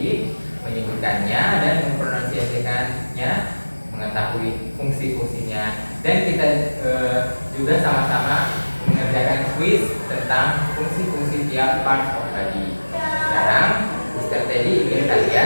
menyebutkannya dan mempronunciasikannya, mengetahui fungsi-fungsinya, dan kita juga sama-sama mengerjakan quiz tentang fungsi-fungsi tiap part of body. Sekarang Mr. Teddy ingin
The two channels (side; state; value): both; inverted; correlation -1.00